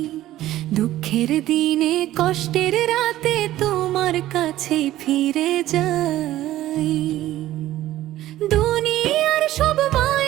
দুঃখের দিনে কষ্টের রাতে তোমার কাছে ফিরে যাই। দুনিয়ার সব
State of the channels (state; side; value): quieter; left; 14.5 dB